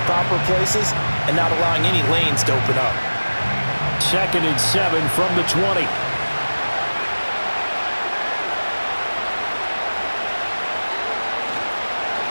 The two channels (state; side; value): inverted; both; correlation -1.00